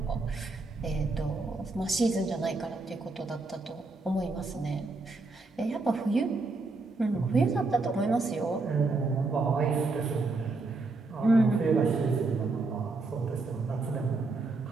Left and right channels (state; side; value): quieter; left; 3.5 dB